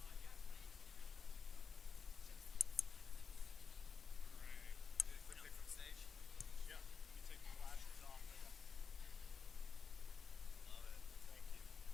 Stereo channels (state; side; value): quieter; right; 5.8 dB